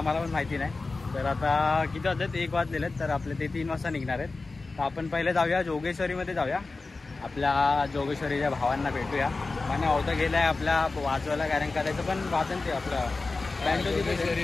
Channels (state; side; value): quieter; right; 3.7 dB